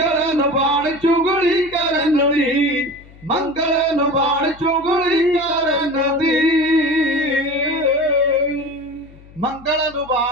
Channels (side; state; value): left; noise; hum, 23 dB below the sound